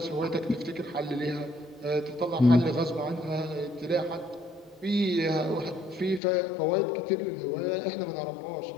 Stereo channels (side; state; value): right; drops out; at 6.2 s